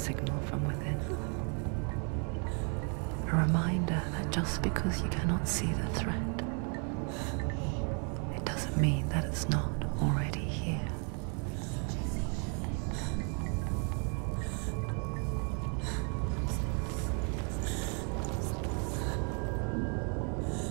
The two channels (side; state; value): left; quieter; 39.2 dB